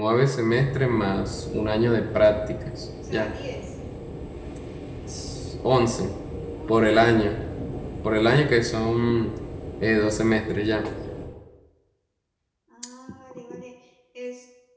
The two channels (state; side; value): identical; both; correlation 1.00